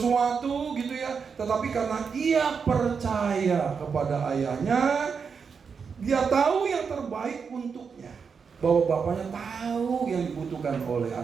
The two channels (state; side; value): quieter; left; 5.9 dB